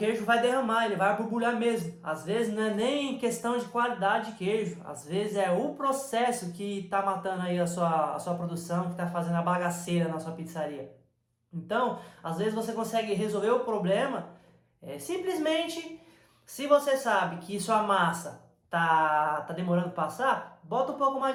vai derramar, ele vai borbulhar mesmo. Às vezes não é nem questão de qualidade de queijo, às vezes é o processo que está matando aí a sua produção, que está fazendo a bagaceira na sua pizzaria. Então, às vezes você consegue resolver o problema simplesmente, se você sabe que sua massa tá demorando para passar, bota um pouco mais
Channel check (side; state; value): both; identical; correlation 1.00